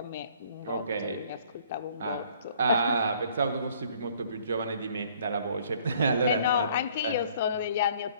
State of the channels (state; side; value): inverted; both; correlation -0.58